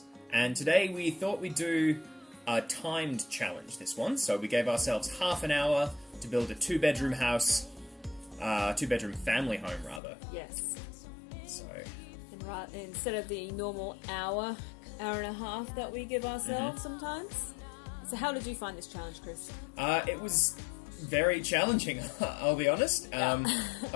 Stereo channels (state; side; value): drops out; right; at 10.0 s